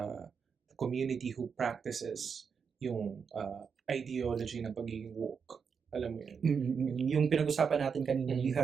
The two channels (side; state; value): left; quieter; 6.2 dB